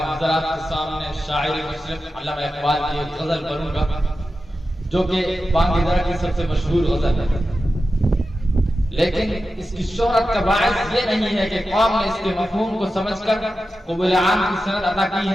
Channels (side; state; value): both; normal; correlation 0.92